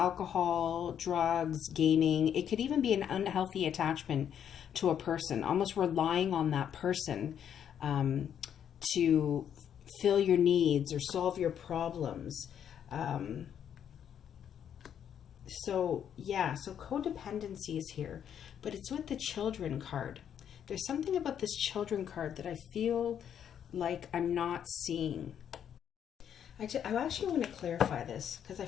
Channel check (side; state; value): right; quieter; 9.0 dB